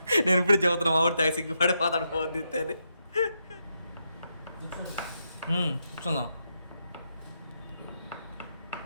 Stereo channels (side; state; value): both; inverted; correlation -0.83